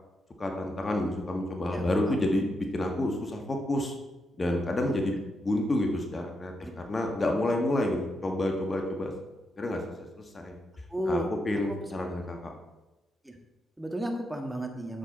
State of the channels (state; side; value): normal; both; correlation 0.83